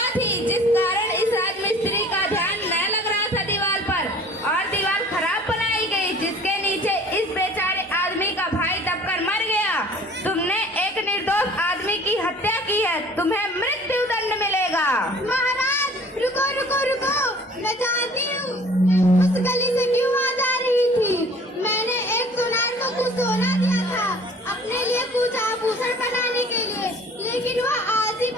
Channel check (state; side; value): normal; both; correlation 0.49